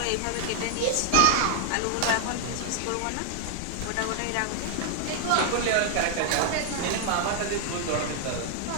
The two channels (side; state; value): both; different; correlation 0.00